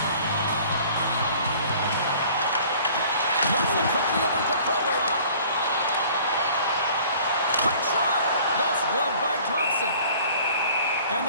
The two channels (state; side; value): inverted; both; correlation -0.51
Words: Moves it quickly over to Provorov. Quick shot! That's gloved by Thompson. And